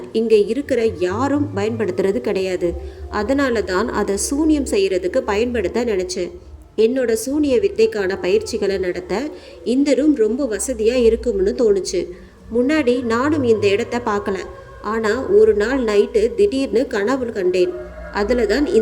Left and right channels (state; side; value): identical; both; correlation 1.00